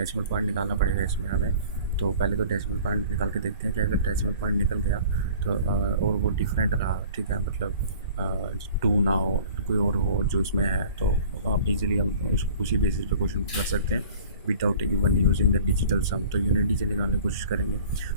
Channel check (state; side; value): inverted; both; correlation -0.47